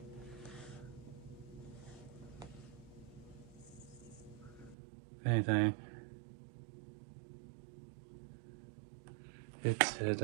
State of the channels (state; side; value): drops out; left; at 4.8 s